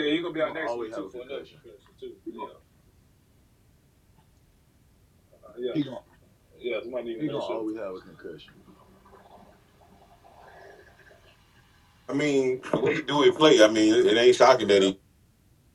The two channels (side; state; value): both; identical; correlation 1.00